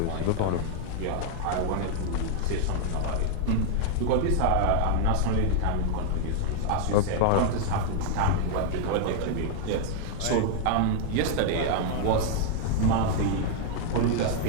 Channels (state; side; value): different; both; correlation 0.00